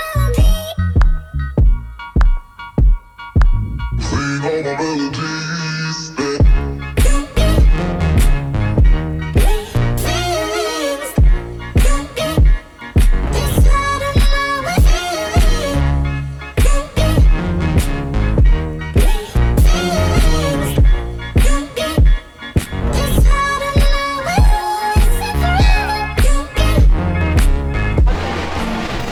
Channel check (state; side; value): identical; both; correlation 1.00